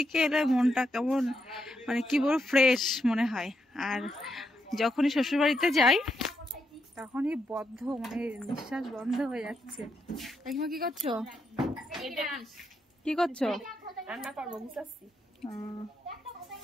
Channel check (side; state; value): both; normal; correlation 0.81